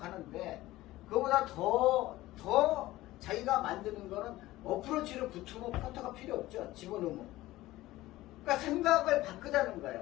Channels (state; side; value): quieter; right; 17.0 dB